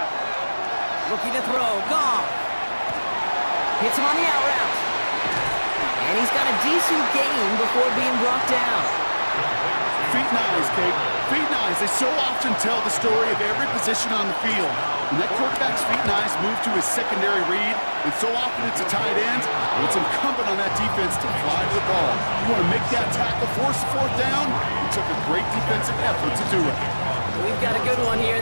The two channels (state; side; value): inverted; both; correlation -1.00